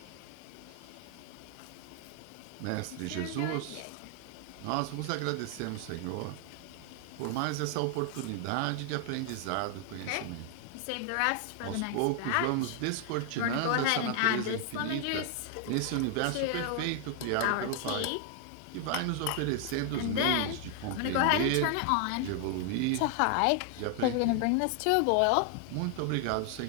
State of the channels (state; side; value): different; both; correlation 0.00